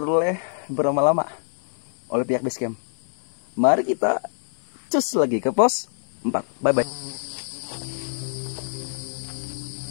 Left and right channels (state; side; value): silent; right; 56 dB below the other